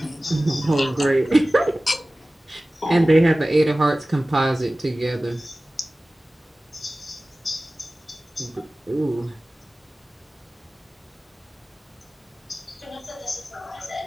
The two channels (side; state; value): both; normal; correlation 0.97